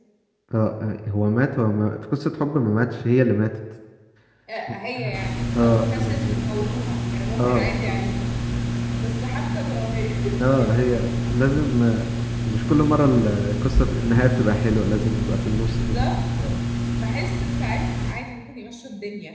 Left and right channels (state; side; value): identical; both; correlation 1.00